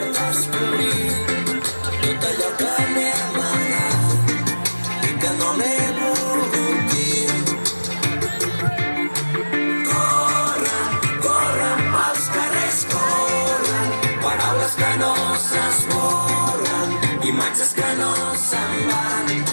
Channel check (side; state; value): both; inverted; correlation -1.00